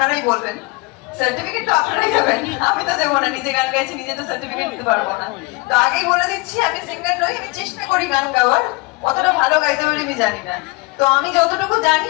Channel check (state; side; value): quieter; right; 25.3 dB